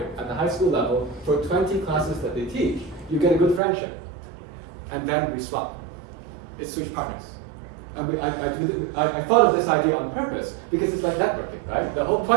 at the high school level for 20 classes that they teach, you get a good friendship. And then we swap. It's switch partners. And I thought of this idea on purpose because it's like networking, right? The whole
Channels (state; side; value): drops out; left; at 3.6 s